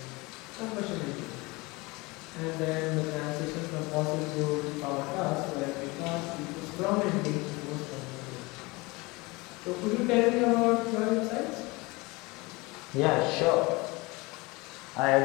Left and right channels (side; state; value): right; quieter; 24.3 dB